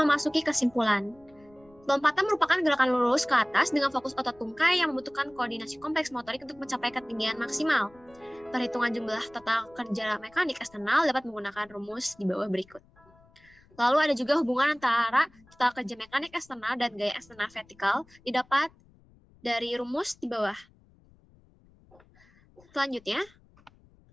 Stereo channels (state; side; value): noise; left; rumble, 29 dB below the sound